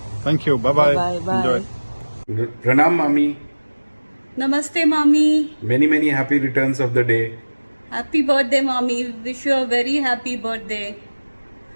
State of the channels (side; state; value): both; inverted; correlation -1.00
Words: Thank you, bye bye bye. प्रणाम मामी। नमस्ते मामी। Many many happy returns of the day. Happy birthday मामी, wish you a very happy birthday.